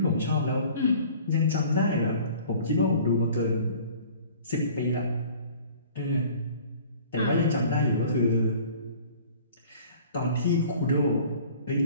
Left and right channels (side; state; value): both; inverted; correlation -0.49